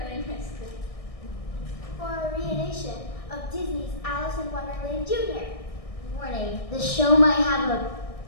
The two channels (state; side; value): late; right; 1.6 ms